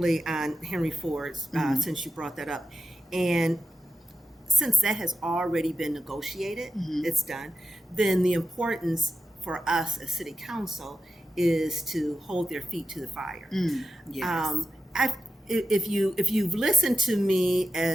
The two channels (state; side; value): normal; both; correlation 0.91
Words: on Henry Ford's, since you brought that up. And since that has already been negotiated, it's done, then the importance for us as city council is to hold their feet to the fire. Yes. If you've listened to me